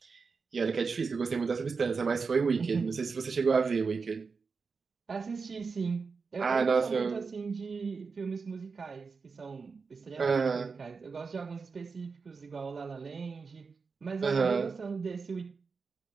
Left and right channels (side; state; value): left; quieter; 4.9 dB